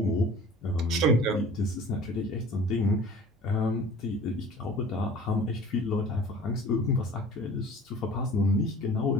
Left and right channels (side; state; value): both; normal; correlation 0.45